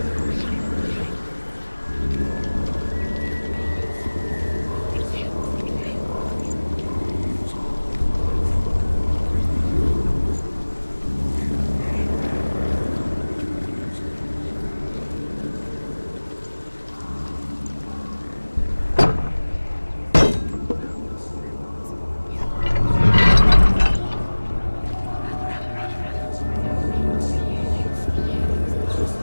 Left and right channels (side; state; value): both; inverted; correlation -1.00